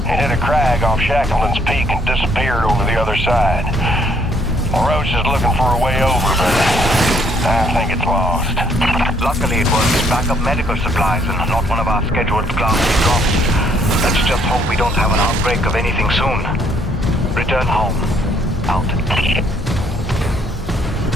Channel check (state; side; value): normal; both; correlation 0.66